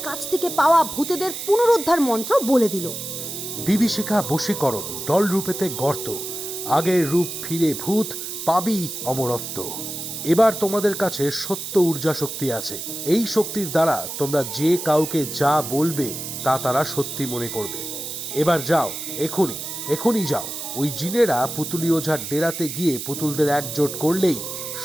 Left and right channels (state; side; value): noise; right; hiss, 7 dB below the sound